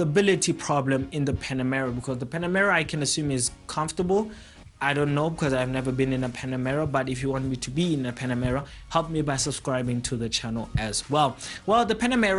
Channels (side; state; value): both; identical; correlation 1.00